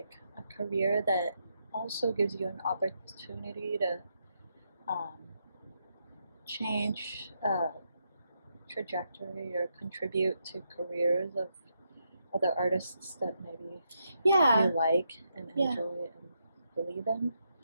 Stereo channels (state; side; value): inverted; both; correlation -0.81